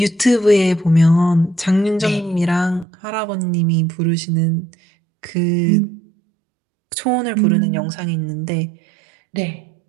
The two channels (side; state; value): left; drops out; at 2.9 s